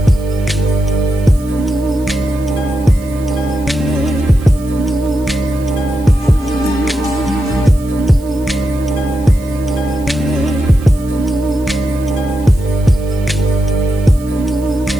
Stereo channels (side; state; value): right; noise; hiss, 24 dB below the sound